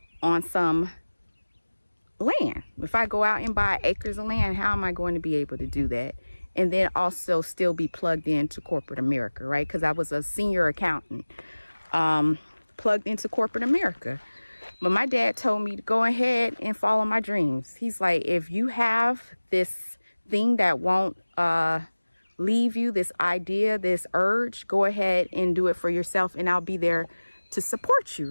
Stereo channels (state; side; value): inverted; both; correlation -1.00